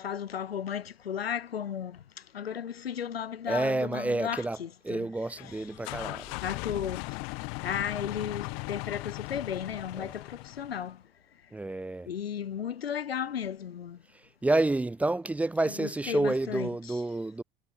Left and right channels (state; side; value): normal; both; correlation 0.62